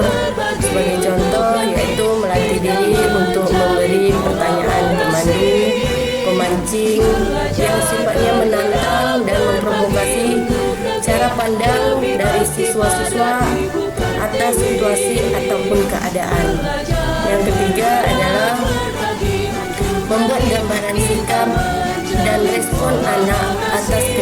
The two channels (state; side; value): identical; both; correlation 1.00